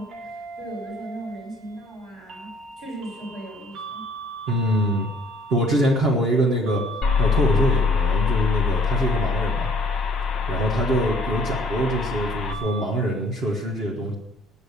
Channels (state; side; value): normal; both; correlation 0.58